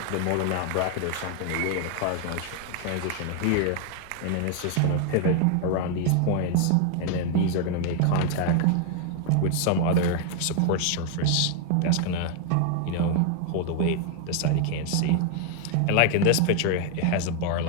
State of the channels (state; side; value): different; both; correlation 0.00